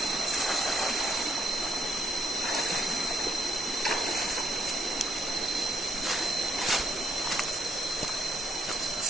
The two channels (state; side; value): normal; both; correlation 0.72